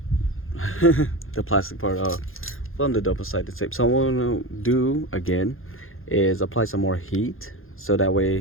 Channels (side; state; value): right; late; 0.60 ms